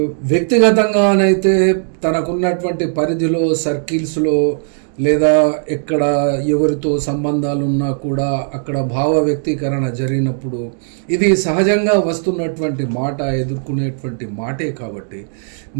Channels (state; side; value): silent; left; digital silence